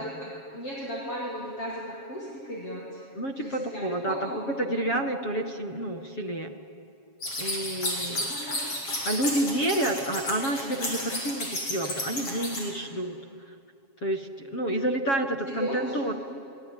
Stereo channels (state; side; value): late; right; 7.3 ms